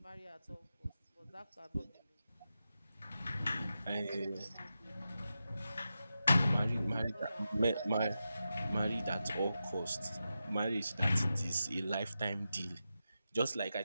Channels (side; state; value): both; inverted; correlation -0.90